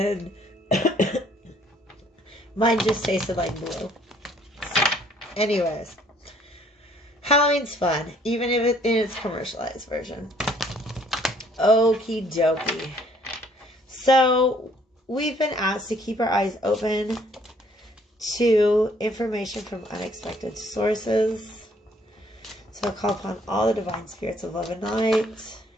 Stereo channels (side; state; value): both; normal; correlation 0.62